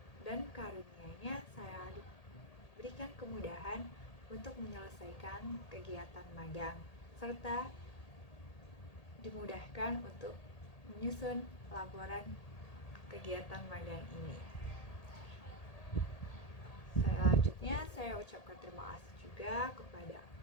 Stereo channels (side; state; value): right; late; 1.8 ms